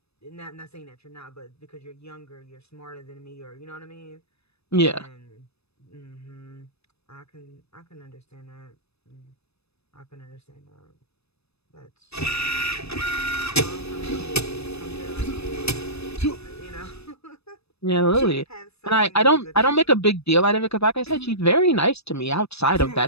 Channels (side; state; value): right; late; 0.79 ms